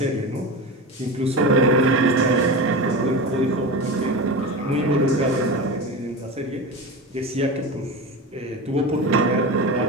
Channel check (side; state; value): both; normal; correlation 0.25